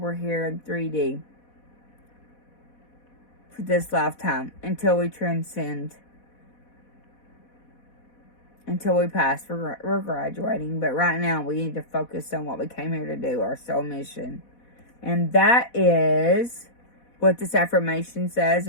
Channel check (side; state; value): right; late; 4.1 ms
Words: here in 3D for this lifetime until we transcend. Until we pass, we're graduating. But right now, we need to focus on what we came here to do, our soul mission. And that is what this affirmation says.